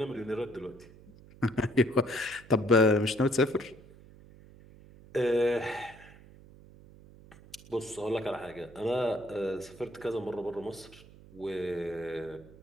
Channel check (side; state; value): right; noise; hum, 21 dB below the sound